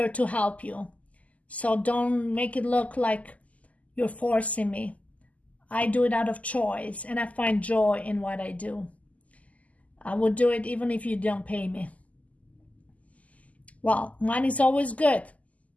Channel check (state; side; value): late; right; 0.072 ms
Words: to help you. So don't make it look like you're forcing me. I do it out of choice, and I find joy in what I do. I would do it even if you don't pay me. Well, money is always good,